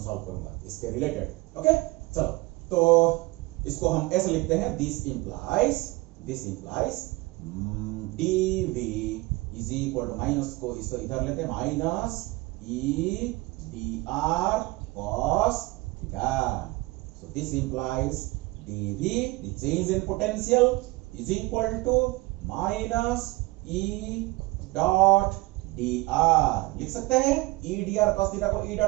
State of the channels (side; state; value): left; quieter; 21.8 dB